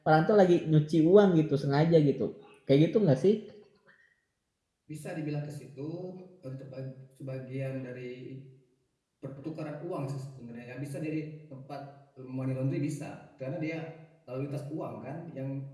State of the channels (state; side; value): identical; both; correlation 1.00